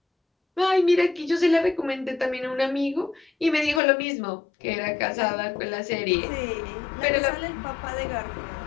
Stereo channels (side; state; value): right; drops out; at 3.8 s